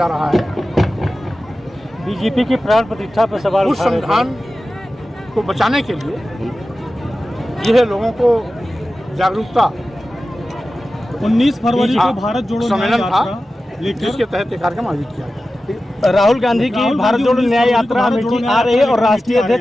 रहा है, बीजेपी की प्राण प्रतिष्ठा पर सवाल उस उठा रहे थे। संविधान को बचाने के लिए यह लोगों को जागरूकता 19 फरवरी को हाँ, भारत जोड़ो सम्मेलन न्याय था, यात्रा लेकर जिसके तहत ये कार्यक्रम आयोजित किया गया। राहुल गांधी की भारत जोड़ो न्याय यात्रा अमेठी आ रही है और राष्ट्रीय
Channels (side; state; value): both; normal; correlation 0.94